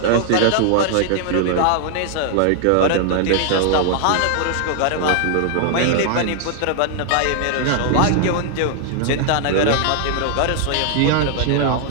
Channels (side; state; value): both; different; correlation 0.00